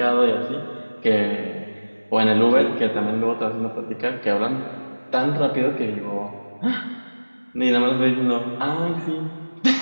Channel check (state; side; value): inverted; both; correlation -1.00